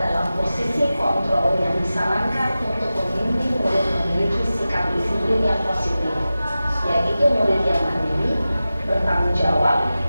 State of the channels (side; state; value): both; inverted; correlation -0.95